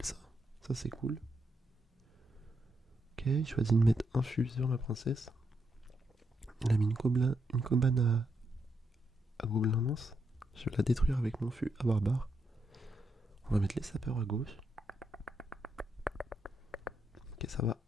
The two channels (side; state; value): both; normal; correlation 0.81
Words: ça. Ça c'est cool. Ok, il choisit de mettre un fût sur ma princesse. Il a mis une cabane à gobelin lance. Je vais la détruire avec mon fût à barbare. On va mettre les sapeurs à gauche. Ok, ça va